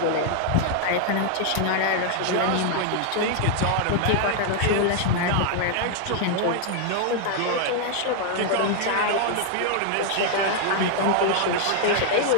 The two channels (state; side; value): different; both; correlation 0.00